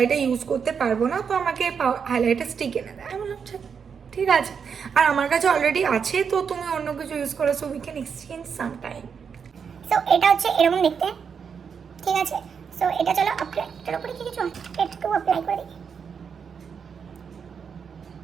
ইউজ করতে পারবো না, তো আমাকে হাইলাইটার স্টিক এনে দেয়। আমি বললাম ঠিক আছে, আর আমার কাছে অলরেডি আছে, তো তুমি অন্য কিছু ইউজ করো, so we can exchange some time. So এটা হচ্ছে এরকম দেখতে, ঠিক আছে। সো এটা চলো অ্যাপ্লাই, এটার উপরে কি কিছু একটু অ্যাপ্লাই করে দিই।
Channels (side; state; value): left; quieter; 6.6 dB